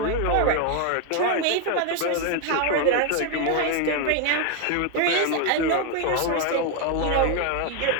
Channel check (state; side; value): different; both; correlation 0.01